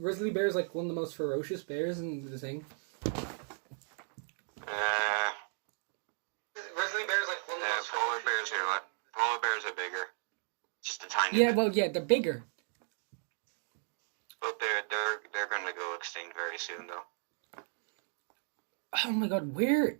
grizzly bears like one of the most ferocious bears in the thing? Grizzly bears like one of the most polar bears here. What? Polar bears are bigger. Just a tiny Yeah, bit. well, yeah, they're bigger. But they're going to go extinct very soon, though. Oh my god, where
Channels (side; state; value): left; silent; 54 dB below the other